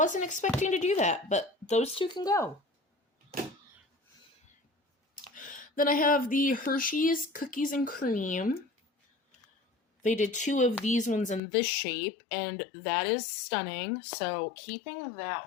expecting to do that, but those two can go. Then I have the Hershey's Cookies and Cream. They did 2 of these ones in this shape, and that is stunning. So keeping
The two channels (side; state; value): right; drops out; at 11.4 s